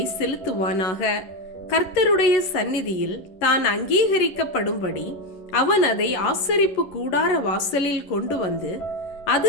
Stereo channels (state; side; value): late; right; 11 ms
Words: செலுத்துவானாக. கர்த்தருடைய சந்நிதியில் தான் அங்கீகரிக்கப்படும்படி அவன் அதை ஆசரிப்பு கூடார வாசலில் கொண்டு வந்து,